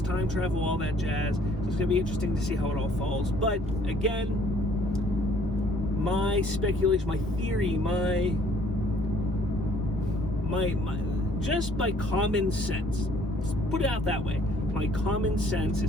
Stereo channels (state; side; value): normal; both; correlation 0.59